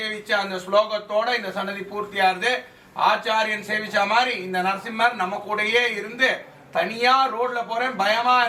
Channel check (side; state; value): both; identical; correlation 1.00